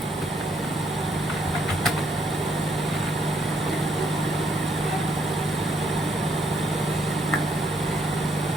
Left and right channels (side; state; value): both; normal; correlation 0.72